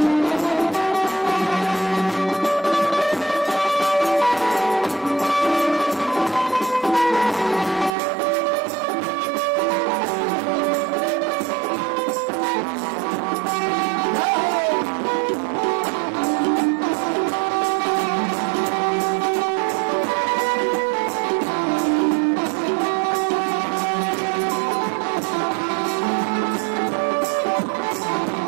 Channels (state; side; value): drops out; left; at 7.9 s